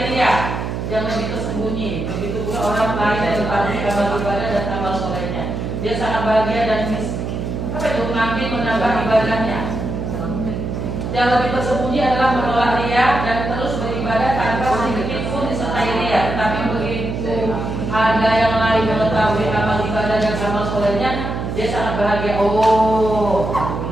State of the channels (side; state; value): right; noise; hum, 4 dB below the sound